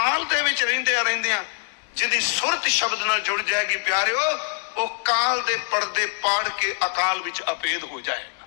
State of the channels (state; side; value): silent; right; digital silence